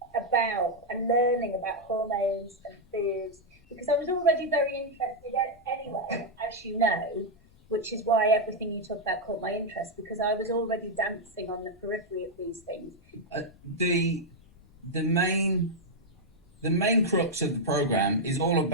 about and learning about hormones and foods because I was already very interested anyway, as you know, which is why everything you talk about caught my interest because I was already dancing on the periphery of these things. The main crux of the program is all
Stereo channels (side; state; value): left; noise; rumble, 28 dB below the sound